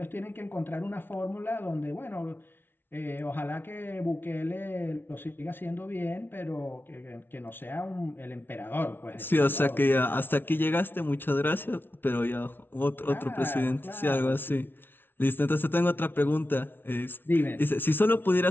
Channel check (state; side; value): late; right; 0.10 ms